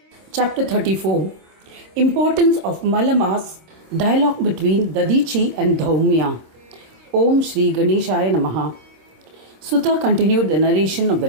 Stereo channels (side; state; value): left; late; 26 ms